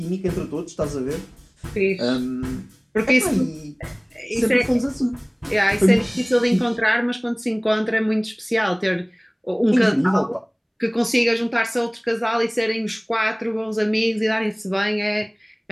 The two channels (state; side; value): identical; both; correlation 1.00